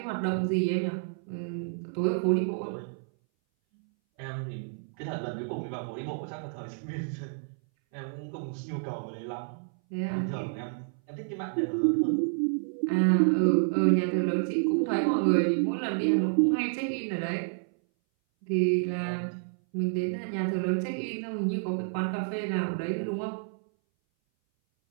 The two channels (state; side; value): silent; left; 58 dB below the other